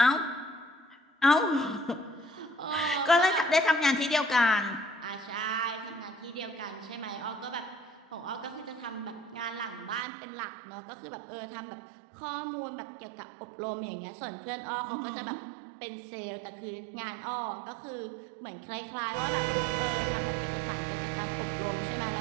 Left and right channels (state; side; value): drops out; left; at 10.1 s